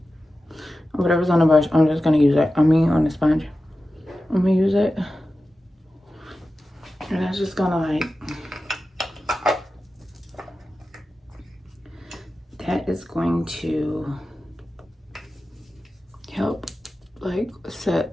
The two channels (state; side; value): normal; both; correlation 0.93